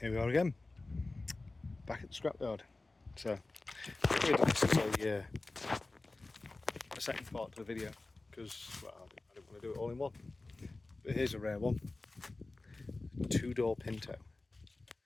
Here we are again, back at the scrapyard. So, really nice to a second part to the video because, well, I didn't want to do it all in one. But here's a rare one: two-door Pinto.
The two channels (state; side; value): quieter; right; 3.2 dB